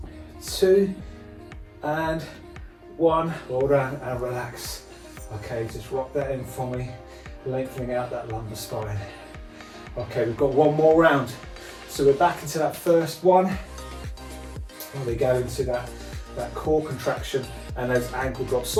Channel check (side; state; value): both; identical; correlation 1.00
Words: 2, and 1. Well done, and relax. Okay, just rock that in for me. lengthening out that lumbar spine. Okay, we've got one more round. So we're back into that first one. And we go into that core contraction and those ankle drops.